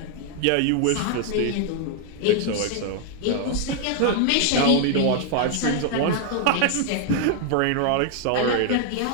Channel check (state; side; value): different; both; correlation 0.00